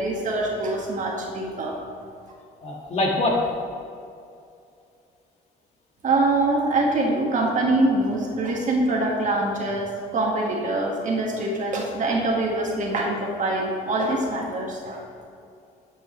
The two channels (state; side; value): normal; both; correlation 0.39